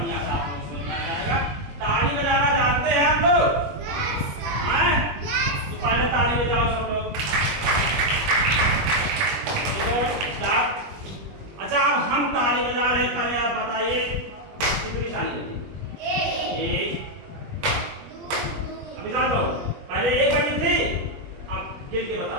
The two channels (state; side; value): late; left; 21 ms